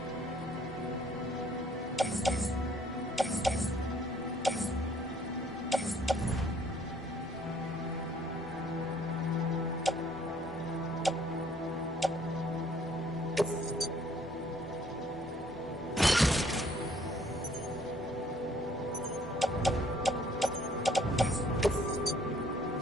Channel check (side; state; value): both; normal; correlation 0.61